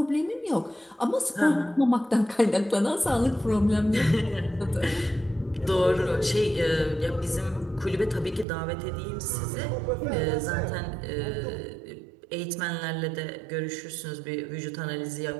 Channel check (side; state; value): left; drops out; at 8.5 s